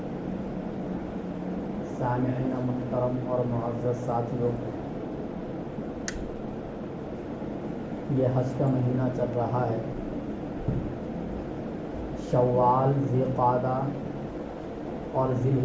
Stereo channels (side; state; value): both; identical; correlation 1.00